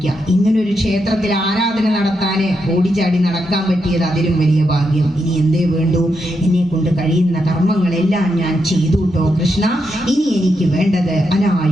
ഇങ്ങനൊരു ക്ഷേത്രത്തിൽ ആരാധന നടത്താന് ഓടിച്ചാടി നടക്കാൻ പറ്റിയത് അതിലും വലിയ ഭാഗ്യം. ഇനി എന്തേ വേണ്ടു? എന്നെ കൊണ്ട് കഴിയുന്ന കർമ്മങ്ങളെല്ലാം ഞാൻ ചെയ്തു കേട്ടോ കൃഷ്ണ. ഇനി എനിക്ക് വേണ്ടത്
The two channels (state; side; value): normal; both; correlation 0.83